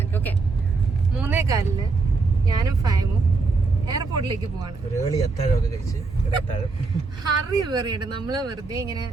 ഓക്കെ 3:15 ഞാനും ഫൈമും എയർപോർട്ടിലേക്ക് പോവാണ്. ഹറി പറയട്ടെ, നമ്മള് വെറുതെ ഇങ്ങനെ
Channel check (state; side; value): quieter; left; 4.0 dB